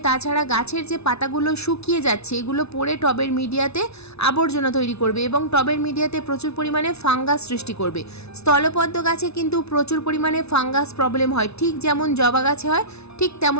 তাছাড়া গাছের যে পাতাগুলো শুকিয়ে যাচ্ছে, এগুলো পড়ে টবের মিডিয়াতে আবর্জনা তৈরি করবে এবং টবের মিডিয়াতে প্রচুর পরিমাণে ফাঙ্গাস সৃষ্টি করবে। স্থলপদ্ম গাছে কিন্তু প্রচুর পরিমাণে ফাঙ্গাস প্রবলেম হয়, ঠিক যেমন জবা গাছে হয়, ঠিক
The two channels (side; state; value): right; late; 0.80 ms